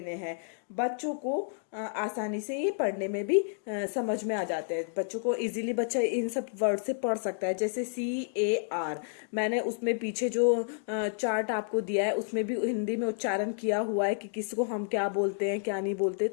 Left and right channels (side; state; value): right; silent; digital silence